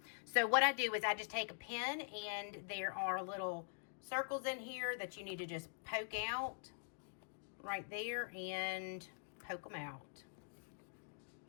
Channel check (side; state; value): right; silent; digital silence